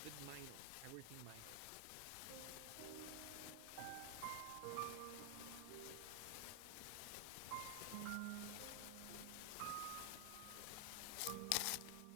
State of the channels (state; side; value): different; both; correlation 0.00